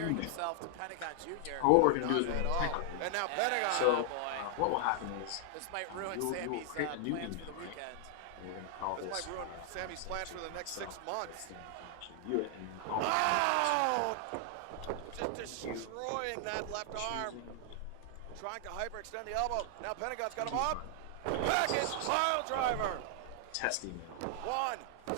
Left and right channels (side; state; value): both; different; correlation 0.00